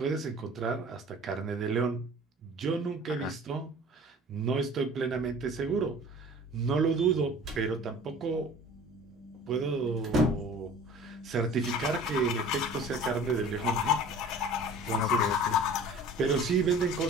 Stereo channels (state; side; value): normal; both; correlation 0.44